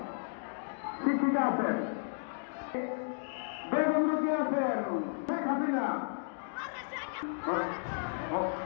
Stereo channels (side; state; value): right; silent; digital silence